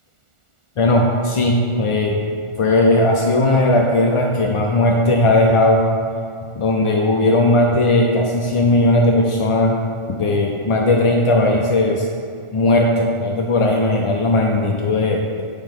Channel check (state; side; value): late; right; 1.4 ms